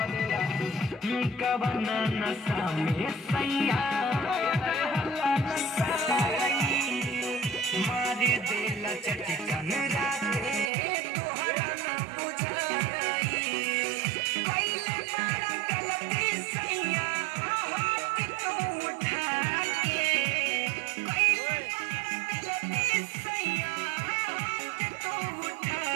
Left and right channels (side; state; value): left; drops out; at 10.7 s